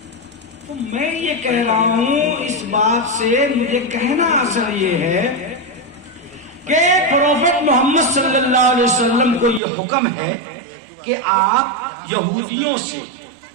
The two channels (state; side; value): drops out; left; at 9.6 s